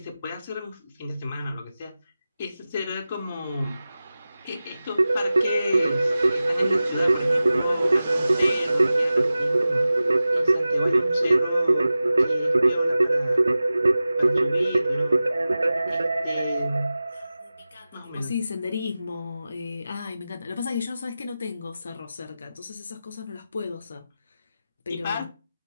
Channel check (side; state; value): both; inverted; correlation -0.95